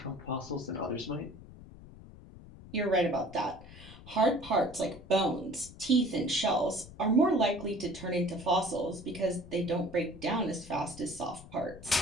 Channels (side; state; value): left; noise; rumble, 17 dB below the sound